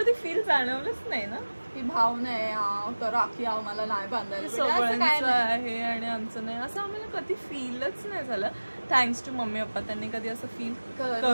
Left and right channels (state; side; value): inverted; both; correlation -1.00